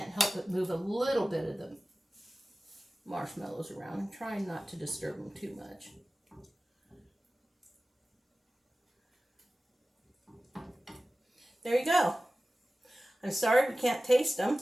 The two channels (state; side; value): normal; both; correlation 0.96